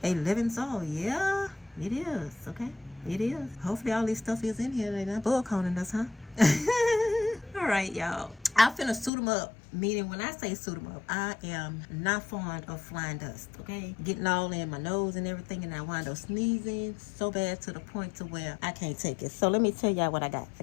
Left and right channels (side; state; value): right; drops out; at 9.1 s